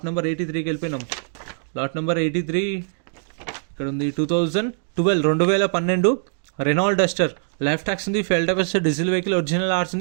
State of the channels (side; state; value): left; silent; 64 dB below the other